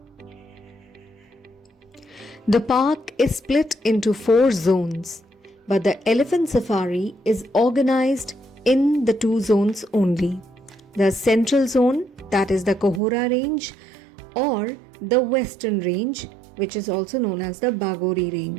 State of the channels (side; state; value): left; drops out; at 13.0 s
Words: The park is split into 4 zones, but the elephant safari is organized in the 2 zones only. The central zone, that is the Kohora range, or the western range, which is also known as the Bagori